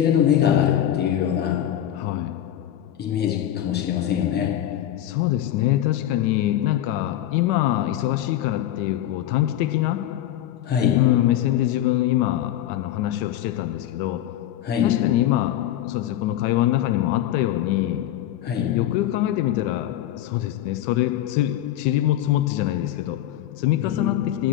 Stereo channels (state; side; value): quieter; right; 12.2 dB